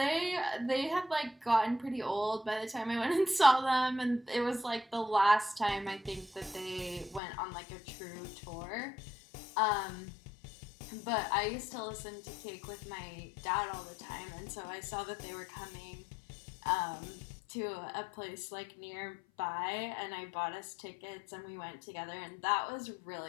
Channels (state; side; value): drops out; right; at 7.2 s